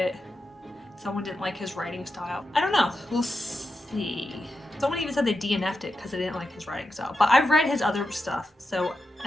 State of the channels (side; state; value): both; normal; correlation 0.88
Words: Someone didn't like his writing style. I don't know, we'll see. Someone even said they DNF'd it because they didn't like his writing style. But I've read his other stuff, so